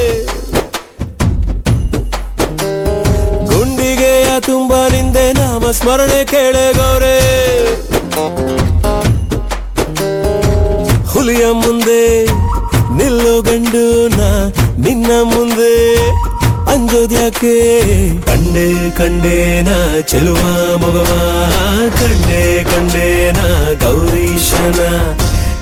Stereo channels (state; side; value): identical; both; correlation 1.00